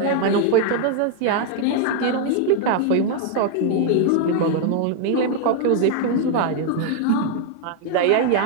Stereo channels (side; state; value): both; different; correlation 0.00